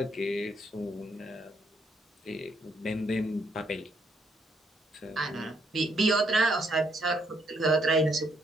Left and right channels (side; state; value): both; normal; correlation 0.73